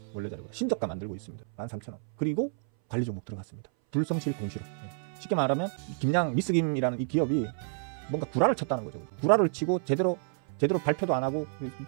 원래 자리보다 신저가 만들고 있습니다. 13,000원. 그리고 관리 종목 들어갔습니다. 불성실 공시로. 쉽게 말하면 김양 미스김이라는 이 기업이 뭔가 구라를 쳤다는 거죠. 구라를 치고 제대로 발표도 안 하고,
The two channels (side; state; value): left; silent; 58 dB below the other